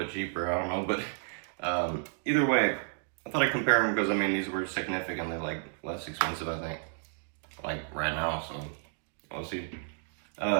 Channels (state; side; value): silent; left; 57 dB below the other